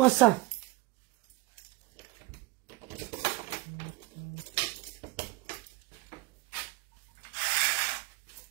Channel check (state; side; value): quieter; left; 21.6 dB